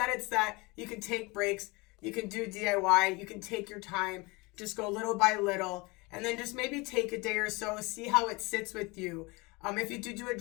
it's that you can take breaks. You can do DIY. You can take your time. Just go little by little. And then just maybe take a day or so. See how it sits with you. If you do a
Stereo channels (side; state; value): right; quieter; 25.5 dB